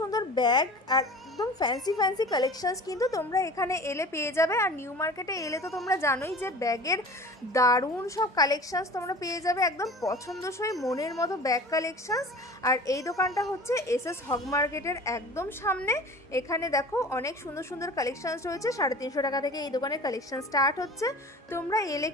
ব্যাগ আর একদম ফ্যান্সি কালেকশনস কিন্তু তোমরা এখানে এলে পেয়ে যাবে। আর নিউ মার্কেটে এলে তো তোমরা জানোই যে ব্যাগের দারুণ সব কালেকশনস তোমরা পেয়ে যাবে, একদম পছন্দসই মনের মতো ব্যাগ কালেকশনস। আর এই দোকানটা হচ্ছে এসএস হগ মার্কেটের একদম সামনে। এখানে দেখো অনেক সুন্দর সুন্দর কালেকশনস রয়েছে। 350 টাকা থেকে এই দোকানের কালেকশন স্টার্ট হচ্ছে। তোমরা এলে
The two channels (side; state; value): both; normal; correlation 0.40